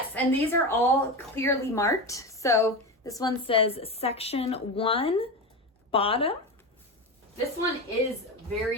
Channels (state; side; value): normal; both; correlation 0.21